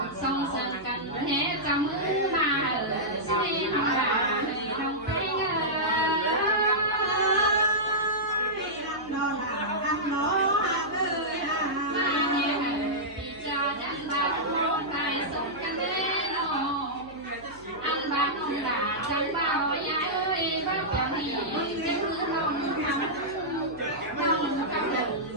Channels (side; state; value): right; noise; hum, 23 dB below the sound